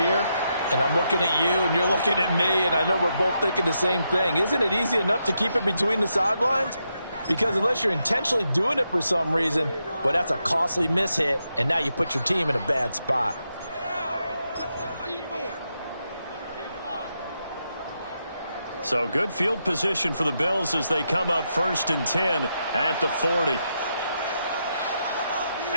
and I'm looking at you, and you're looking at me, and I know we're both thinking the same thing. Isn't it easy enough to keep it between the sidelines? Because unless you're intentionally doing it for some reason, well, that's a costly mishit, and now you put your team in a bad spot. So good field position for the Bills as they come up 1st and 10 at the 40.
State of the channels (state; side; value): inverted; both; correlation -0.83